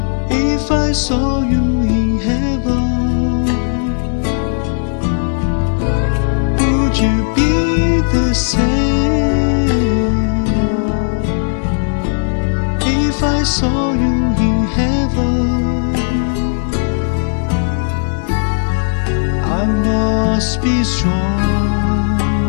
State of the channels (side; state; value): right; silent; digital silence